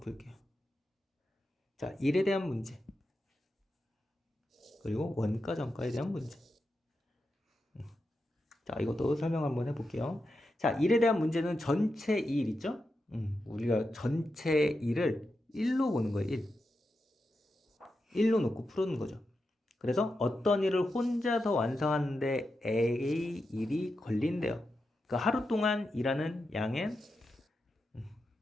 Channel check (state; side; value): normal; both; correlation 0.88